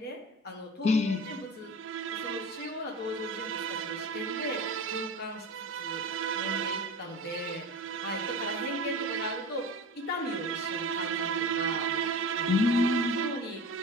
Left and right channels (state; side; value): normal; both; correlation 0.33